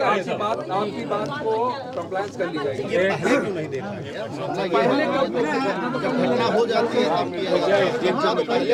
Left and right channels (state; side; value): identical; both; correlation 1.00